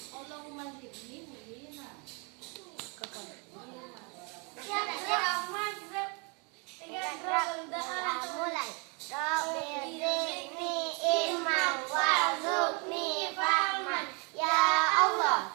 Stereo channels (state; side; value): quieter; left; 33.4 dB